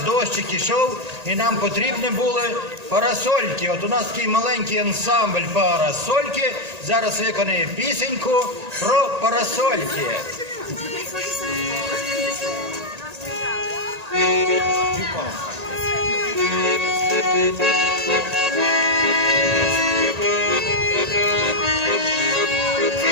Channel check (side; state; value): left; late; 1.8 ms